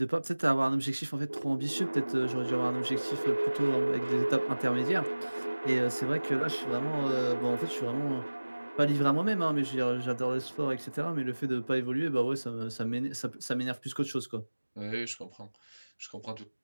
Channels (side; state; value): both; inverted; correlation -1.00